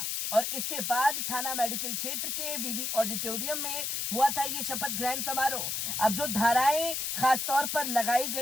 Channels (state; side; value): noise; left; hiss, 1 dB below the sound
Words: और इसके बाद थाना मेडिकल क्षेत्र के विवि ऑडिटोरियम में हुआ था ये शपथ ग्रहण समारोह। अब जो धाराएं खास तौर पर लगाई